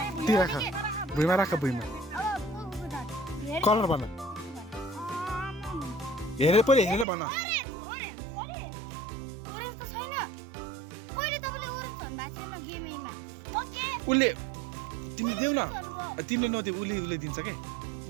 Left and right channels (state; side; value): drops out; left; at 7.1 s